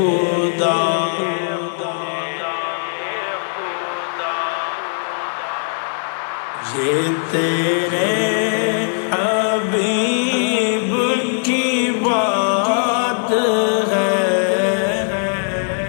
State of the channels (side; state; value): right; silent; 66 dB below the other